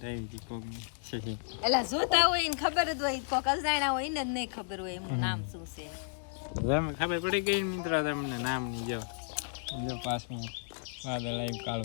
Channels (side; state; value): right; silent; digital silence